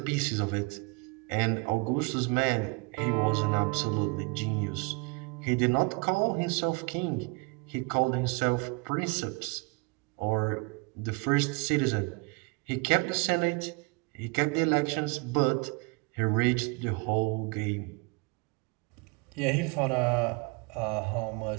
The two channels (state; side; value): quieter; left; 30.2 dB